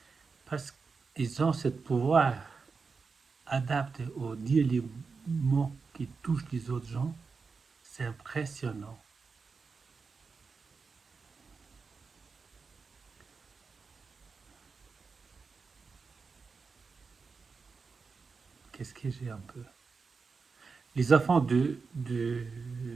parce qu'ils ont ce pouvoir adapté au dire les mots qui touchent les autres gens. C'est impressionnant. Qu'est-ce que j'ai un peu? Les enfants de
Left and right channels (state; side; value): quieter; left; 4.9 dB